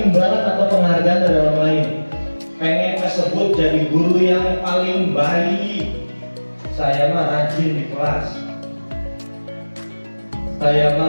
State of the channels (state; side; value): inverted; both; correlation -1.00